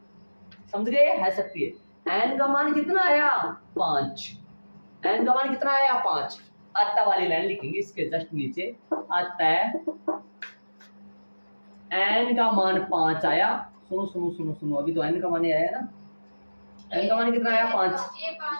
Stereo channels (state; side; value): inverted; both; correlation -1.00